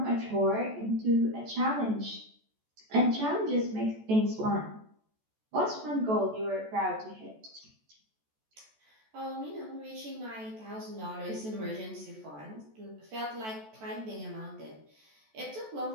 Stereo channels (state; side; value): late; left; 14 ms